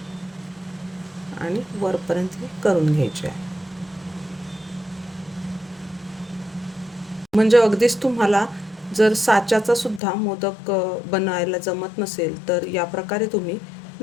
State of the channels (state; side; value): drops out; right; at 10.0 s